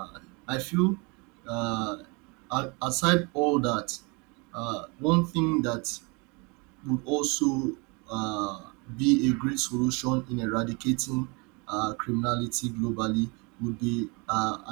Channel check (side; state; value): left; quieter; 29.9 dB